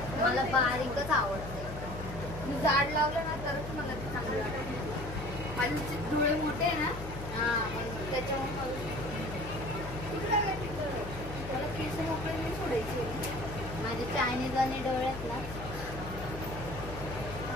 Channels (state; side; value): noise; left; hum, 9 dB below the sound